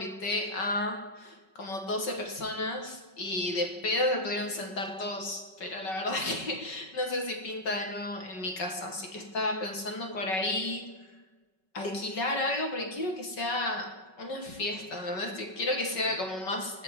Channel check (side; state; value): right; late; 5.3 ms